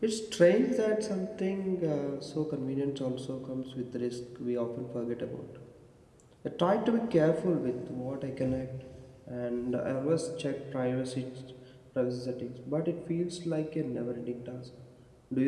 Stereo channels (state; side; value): identical; both; correlation 1.00